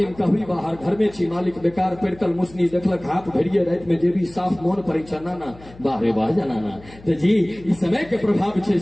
कहबी बाहर घर में छी मालिक बेकार पेड़कल मुसनी देखलक हाथ भरिए रात में जे भी साफ मोन पड़े छ नाना, वाह रे वाह जनाना। तो जी इस समय के प्रभाव छै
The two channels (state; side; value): noise; left; hum, 21 dB below the sound